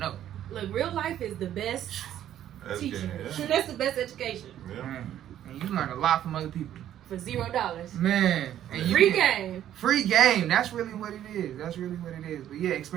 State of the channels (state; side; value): quieter; left; 11.4 dB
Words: Look, real life is the best teacher. Yeah. That's the best education. Yeah. Man, and you learn a lot from other people. For $0. Man. And Free game. Free game. That's really what it is. That's really what it is. But yeah,